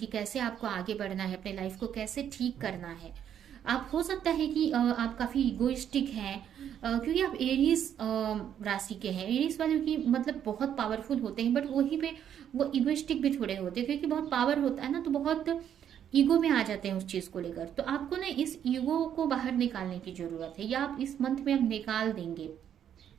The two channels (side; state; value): left; quieter; 9.5 dB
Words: कैसे आपको आगे बढ़ना है, अपने लाइफ को कैसे ठीक करना है। आप, हो सकता है कि आप काफी इगोइस्टिक हैं, क्योंकि आप एरीज राशि के हैं। एरीज वालों की मतलब बहुत पावरफुल होते हैं, बट वही पे वो इगोइस्टिक भी थोड़े होते हैं, क्योंकि बहुत पावर होता है ना, तो बहुत ईगो में आ जाते हैं उस चीज को लेकर। तो आपको ना इस ईगो को बाहर निकालने की जरूरत है, या आप इस मंथ में आप निकाल देंगे,